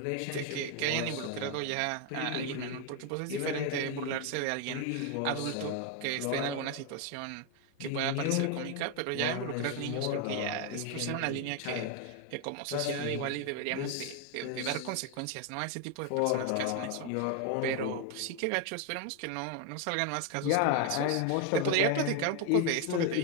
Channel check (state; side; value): different; both; correlation 0.01